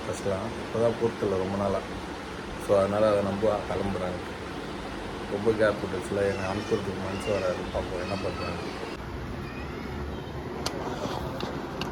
ஃபஸ்ட்லாம் இப்போ தான் பொறுத்தில்ல ரொம்ப நாளாக. ஸோ அதனால் அதை நம்புவா கிளம்புறாங்க. ரொம்ப கேப் விட்டுச்சுல, என்னை அனுப்புறதுக்கு மனசு வராது. பார்ப்போம் என்ன பண்ணுறாங்க.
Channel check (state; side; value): identical; both; correlation 1.00